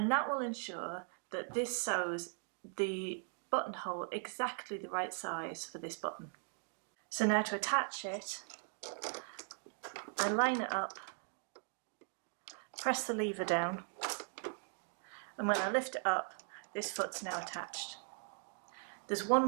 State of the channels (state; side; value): silent; left; 51 dB below the other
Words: that will ensure that this sews the buttonhole exactly the right size for this button. So now to attach it, I line it up, press the lever down, and when I lift it up, this foot's now attached. There's one